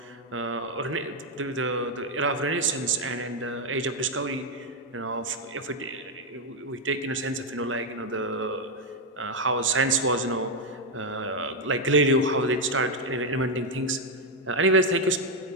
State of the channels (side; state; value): both; normal; correlation 0.02